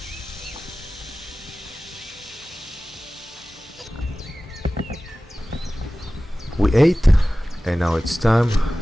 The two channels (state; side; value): normal; both; correlation 0.96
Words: We ate, and now it's time